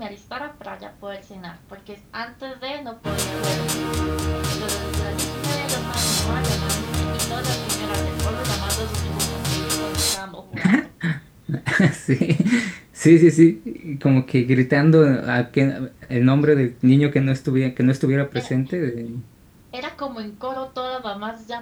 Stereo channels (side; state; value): both; identical; correlation 1.00